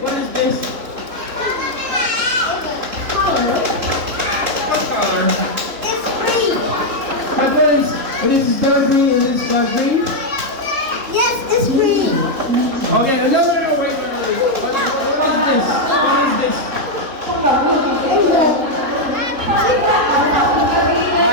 is this? Color. What color? It's green. My friends, this is dark green and this is light green. Yes, it's green. Okay, no, wait. What is this? What is this?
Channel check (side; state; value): left; late; 3.3 ms